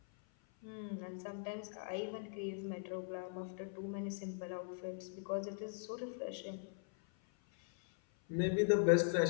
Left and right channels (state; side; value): silent; right; 51 dB below the other